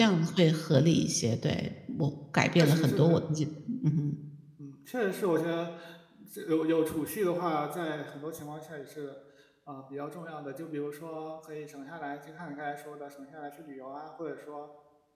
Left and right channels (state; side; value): identical; both; correlation 1.00